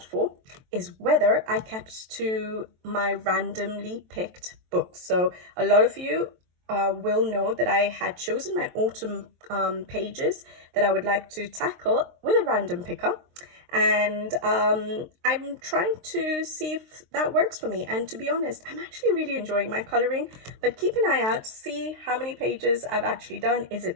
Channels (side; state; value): left; late; 23 ms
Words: for is whether I kept to my randomly picked books. So a lot of you will know that I had chosen my autumn pages that I would like to tackle with a random picker. And I'm trying to see if that works for me. And to be honest, I'm actually really enjoying my coloring, but keep an eye out, see how many pages I've actually done. Is it